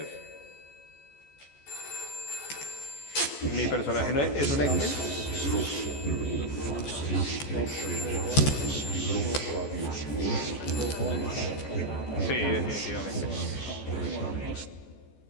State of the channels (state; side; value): late; right; 14 ms